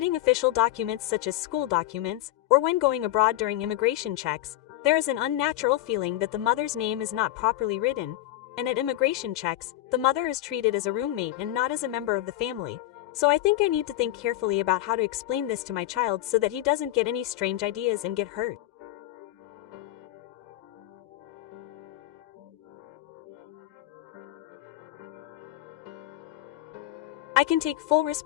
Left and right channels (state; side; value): quieter; right; 14.8 dB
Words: official documents such as school documents, or when going abroad during immigration checks, there is an unnatural feeling that the mother's name is not properly written, and at immigration checks, the mother is treated as a roommate and not as a member of the family. So I think I need to think carefully about how to explain this to my child so that he doesn't get any strange ideas and get hurt. I can take full